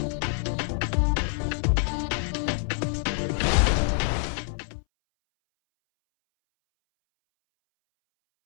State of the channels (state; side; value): silent; right; 61 dB below the other